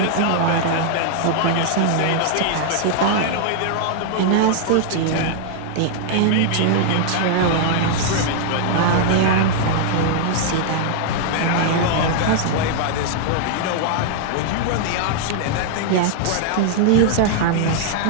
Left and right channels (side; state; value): both; different; correlation -0.01